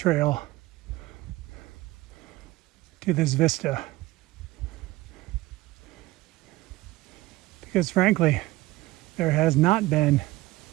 to this vista because frankly there has not been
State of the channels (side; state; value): left; quieter; 18.7 dB